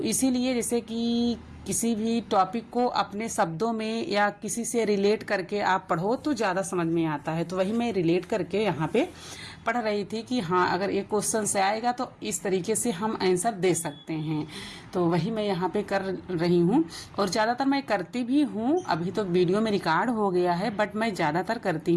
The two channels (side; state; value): both; identical; correlation 1.00